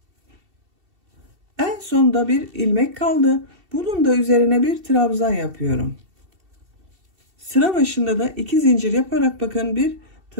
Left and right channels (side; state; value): left; late; 2.7 ms